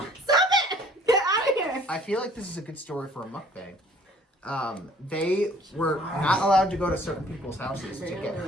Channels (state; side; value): normal; both; correlation 0.56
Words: it! Get out of here! I feel like this is a good story for a mukbang. They were not allowed to go to certain people's houses to get